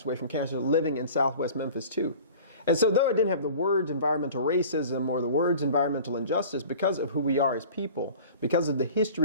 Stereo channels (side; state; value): both; inverted; correlation -0.42